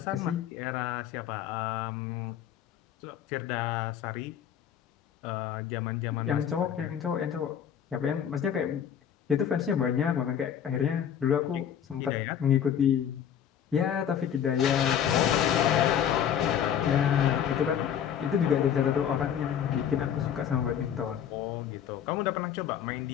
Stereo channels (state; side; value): quieter; right; 9.1 dB